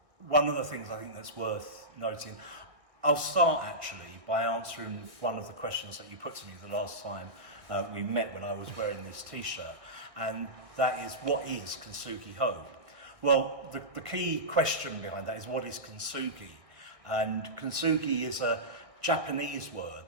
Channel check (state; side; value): late; left; 1.6 ms